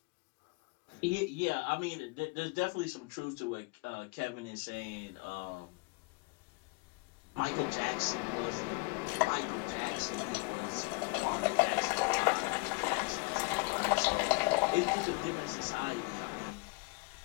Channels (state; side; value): quieter; right; 30.0 dB